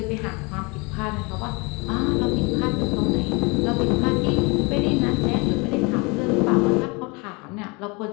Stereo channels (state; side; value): quieter; right; 28.2 dB